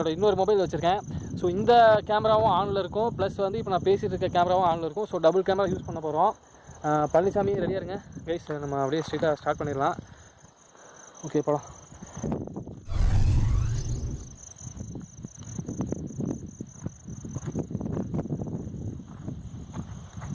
இன்னொரு மொபைல் வச்சுருக்கேன். ஸோ இந்த கேமராவும் ஆனில் இருக்கும், ப்ளஸ் வந்து இப்போ நான் பேசிகிட்டு இருக்க கேமராவும் ஆனில் இருக்கும். ஸோ டபுள் கேமரா யூஸ் பண்ண போகிறோம். பழனிசாமி ரெடியாக இருங்க கைஸ், நம்ம அப்படியே ஸ்ட்ரெயிட்டாக ஸ்டார்ட் பண்ணிடலாம். ஓகே, போகலாம்.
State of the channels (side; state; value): both; identical; correlation 1.00